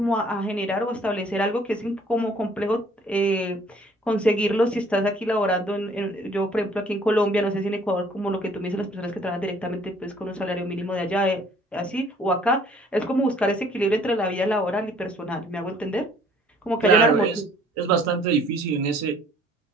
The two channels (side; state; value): both; normal; correlation 0.58